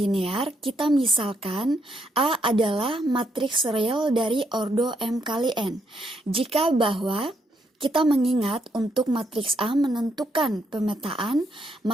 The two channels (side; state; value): both; normal; correlation 0.76